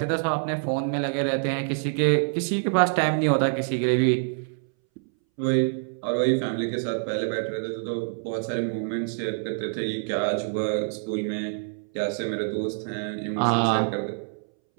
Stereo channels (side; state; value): left; silent; 61 dB below the other